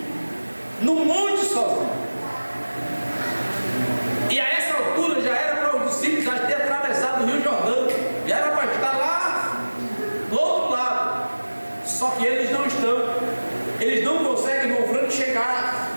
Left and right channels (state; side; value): inverted; both; correlation -1.00